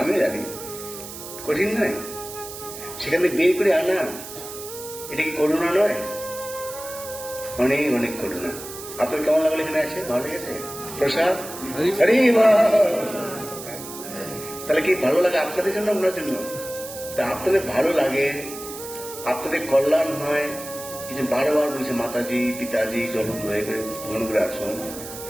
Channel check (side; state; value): right; noise; hiss, 12 dB below the sound